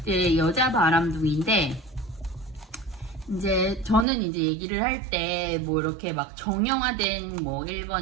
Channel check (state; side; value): drops out; left; at 4.0 s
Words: 이제 여자 바람둥이인데, 이제 저는 이제 얘기를 할 때 뭐 이렇게 막 정형화된 뭐 1번,